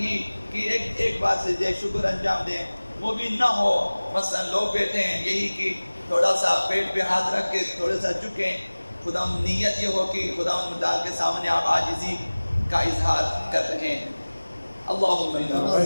کہ ایک بار سجدہ شکر انجام دیں، وہ بھی نہ ہو مثلا لوگ بیٹھے ہیں یہی کہ تھوڑا سا پیٹ پہ ہاتھ رکھ کے تھوڑا سا جھکیں، خدا نیت یہ ہو کہ خدا متعال کے سامنے آپ عاجزی کا اظہار کر رہے ہیں۔ اللہم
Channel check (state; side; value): inverted; both; correlation -1.00